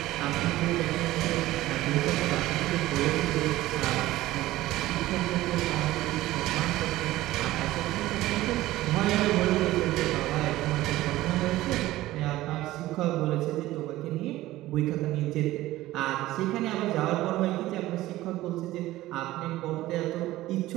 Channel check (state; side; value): quieter; left; 16.4 dB